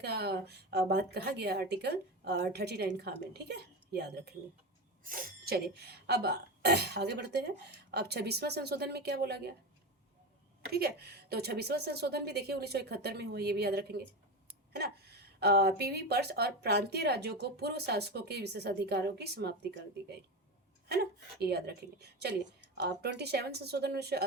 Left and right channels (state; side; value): normal; both; correlation 0.20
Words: का बात कहा गया आर्टिकल 39 खा में, ठीक है, याद रखेंगे। चलिए, अब आगे बढ़ते हैं। अब 26वां संशोधन में क्या बोला गया? ठीक है, तो 26वां संशोधन भी देखिए 1971 में हुआ, ये भी याद रखेंगे, है ना। पीवी पर्स और प्रांतीय राज्यों को पूर्व शासकों के विशेष अधिकारों की समाप्ति कर दी गई, है ना, ये याद रखेंगे। चलिए, 27 संशोधन